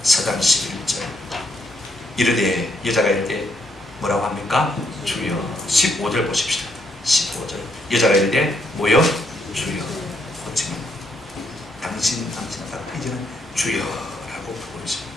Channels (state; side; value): normal; both; correlation 0.75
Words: 4장 11절. 이르되, 여자가 이르되 뭐라고 합니까? 주여. 15절 보십시다. 15절. 여자가 이르되 뭐요? 주여. 호칭은 당신하다. 이제는 주여라고 부르고 있습니다.